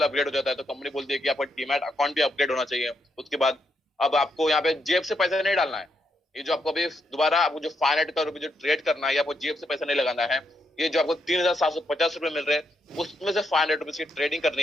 अपग्रेड हो जाता है, तो कंपनी बोलती है कि आपका डीमैट अकाउंट भी अपग्रेड होना चाहिए। उसके बाद अब आपको यहाँ पे जेब से पैसा नहीं डालना है, ये जो आपको अभी दोबारा आपको जो 500 करोड़ रुपए जो ट्रेड करना है, आपको जेब से पैसा नहीं लगाना है, ये जो आपको 3,750 रुपए मिल रहे हैं उसमें से 500 रुपीज की ट्रेडिंग करनी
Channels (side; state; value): both; normal; correlation 0.79